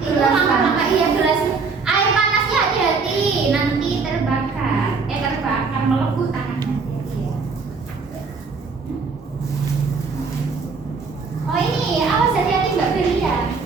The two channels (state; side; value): quieter; left; 4.7 dB